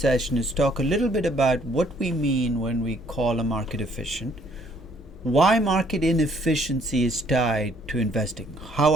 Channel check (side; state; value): both; normal; correlation 0.64